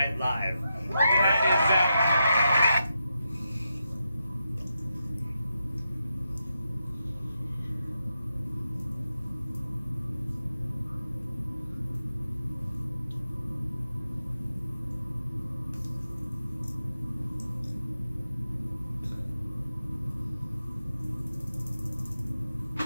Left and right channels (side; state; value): both; inverted; correlation -0.87